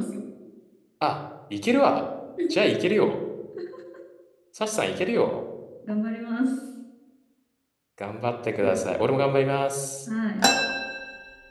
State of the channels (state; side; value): identical; both; correlation 1.00